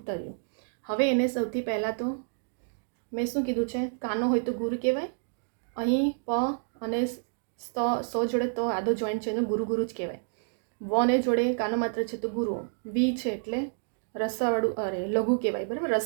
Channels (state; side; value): silent; left; digital silence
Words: હવે એને સૌથી પહેલાં તો મેં શું કીધું છે? કાનો હોય તો ગુરુ કહેવાય. અહીં પ અને સ જોડે તો આદો જોઈન્ટ છે, એનું ગુરુ ગુરુ જ કહેવાય. વને જોડે કાનો માત્ર છે તો ગુરુ. વી છે એટલે રસવાળું લઘુ કહેવાય. બરાબર,